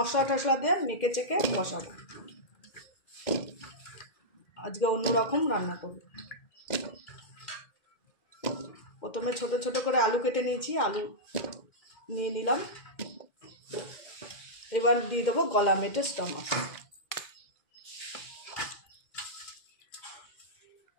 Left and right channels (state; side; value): late; right; 2.1 ms